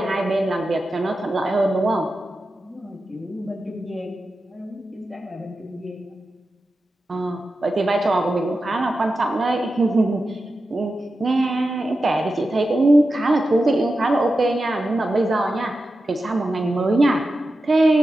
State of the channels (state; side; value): normal; both; correlation 0.91